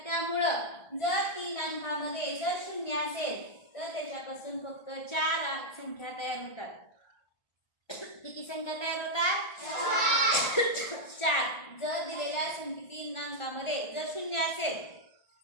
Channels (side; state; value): right; late; 1.4 ms